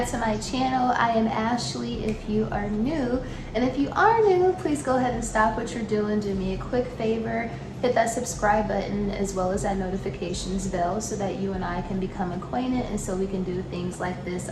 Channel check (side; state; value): both; identical; correlation 1.00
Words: to my channel. I am Ashley if you are new, and if you are new, please go ahead and stop what you're doing. Do me a quick favor, hit that subscribe button as well as that notifications bell so that you and I can become acquainted and so we can do things like this